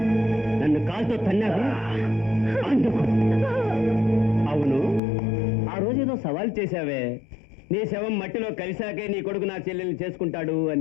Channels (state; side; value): drops out; right; at 5.0 s